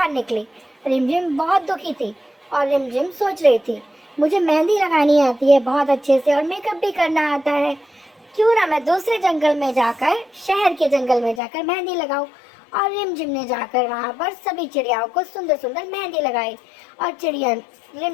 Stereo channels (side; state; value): right; drops out; at 11.4 s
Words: निकली। रिमझिम बहुत दुखी थी और रिमझिम सोच रही थी, मुझे मेहंदी लगानी आती है बहुत अच्छे से और मेकअप भी करना आता है, क्यों ना मैं दूसरे जंगल में जाकर, शहर के जंगल में जाकर मेहंदी लगाऊं। और रिमझिम ने जाकर वहाँ पर सभी चिड़ियाओं को सुंदर सुंदर मेहंदी लगाई और